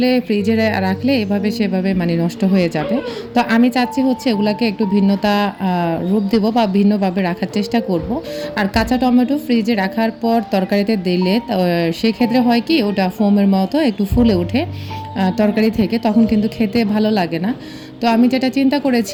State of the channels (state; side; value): identical; both; correlation 1.00